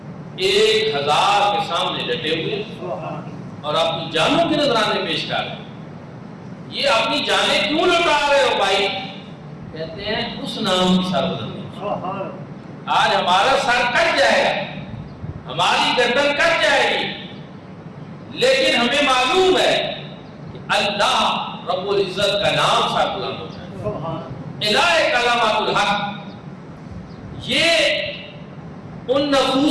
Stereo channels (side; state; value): both; identical; correlation 1.00